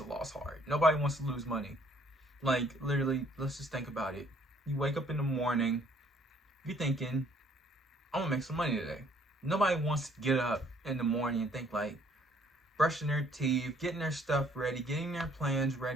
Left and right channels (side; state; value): both; normal; correlation 0.62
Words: loss hard. Nobody wants to lose money. Like, literally, let's just think about it. You wake up in the morning, you're thinking, I'm gonna make some money today. Nobody wants to get up in the morning and think like brushing their teeth, getting their stuff ready, getting their plans